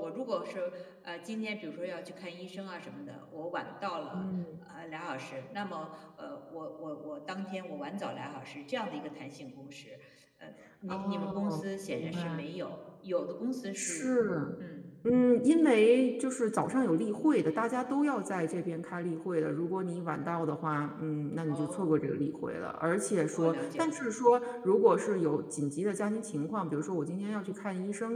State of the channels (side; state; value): both; identical; correlation 1.00